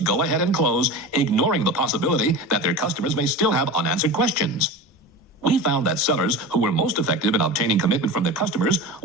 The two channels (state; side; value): normal; both; correlation 0.30